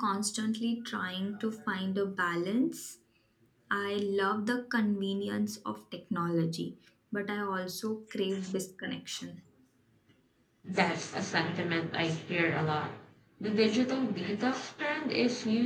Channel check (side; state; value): both; identical; correlation 1.00